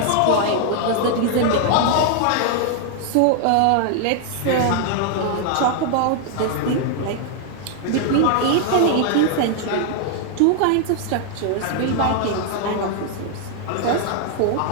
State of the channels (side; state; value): both; different; correlation 0.00